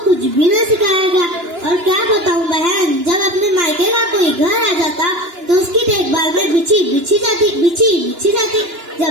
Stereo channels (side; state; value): left; late; 2.9 ms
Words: कुछ भी न सिखाया गया। और क्या बताऊं बहन, जब अपने मायके का कोई घर आ जाता तो उसकी देखभाल में बिछी बिछी जाती।